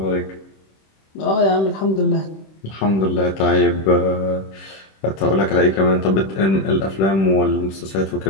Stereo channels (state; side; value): late; right; 26 ms